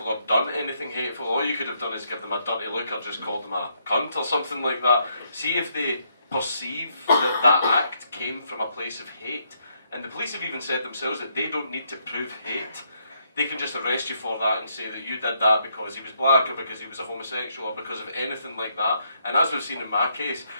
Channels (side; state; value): both; inverted; correlation -0.75